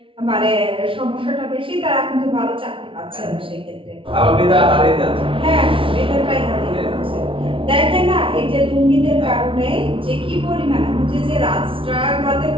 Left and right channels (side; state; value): left; late; 0.25 ms